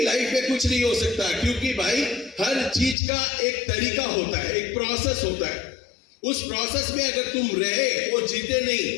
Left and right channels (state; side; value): drops out; right; at 3.0 s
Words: लाइफ में कुछ नहीं हो सकता। क्योंकि भाई हर चीज का एक तरीका होता है, एक प्रोसेस होता है। उस प्रोसेस में अगर तुम रहे और जीते नहीं,